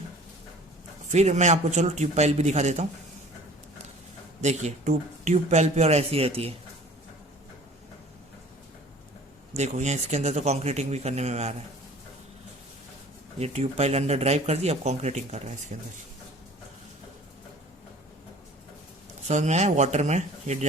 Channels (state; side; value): normal; both; correlation 0.47